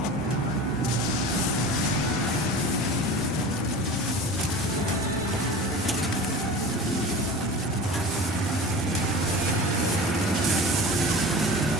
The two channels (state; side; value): normal; both; correlation 0.36